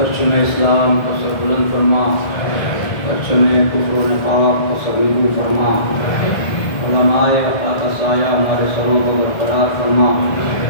اسلام کو سر بلند فرما پرچم کفر و نفاق کو سبیبو فرما علماء خاکہ سایہ ہمارے سروں کو برقرار فرما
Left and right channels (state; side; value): late; right; 1.7 ms